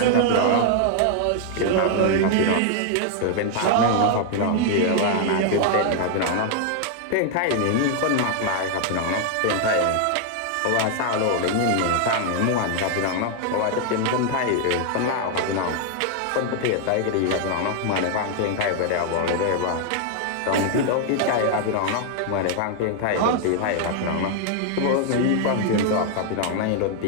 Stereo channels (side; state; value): both; different; correlation 0.00